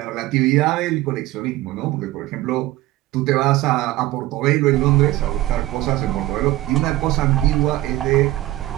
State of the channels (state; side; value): quieter; left; 16.8 dB